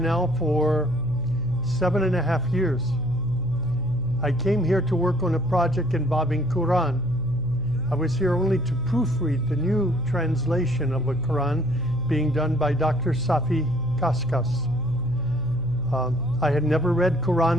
for 7.5 years. I came here to work on a project involving Quran. I was here only to proofread the new translation of a Quran being done by Dr. Safi Kaskas. I had never read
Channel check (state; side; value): noise; right; hum, 13 dB below the sound